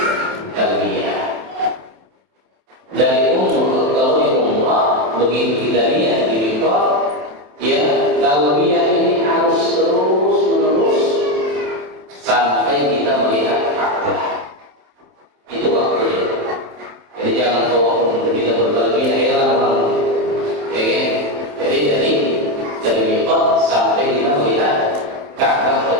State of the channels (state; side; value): late; left; 28 ms